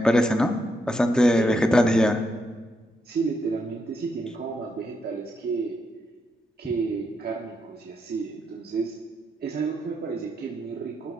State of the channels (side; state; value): both; normal; correlation 0.80